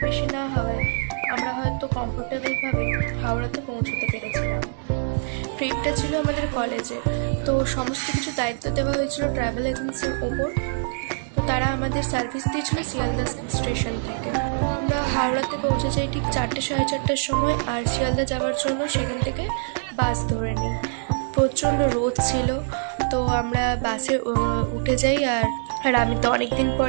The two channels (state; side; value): silent; left; 62 dB below the other